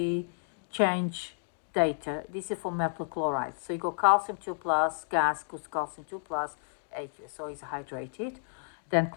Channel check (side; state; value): right; silent; digital silence